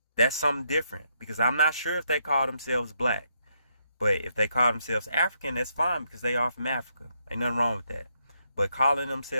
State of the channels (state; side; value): inverted; both; correlation -0.77